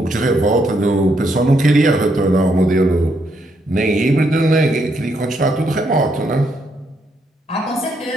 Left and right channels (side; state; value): both; normal; correlation 0.76